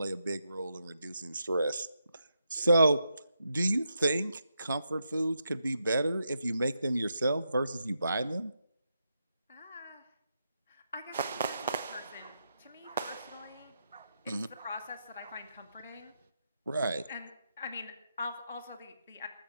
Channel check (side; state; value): both; inverted; correlation -0.84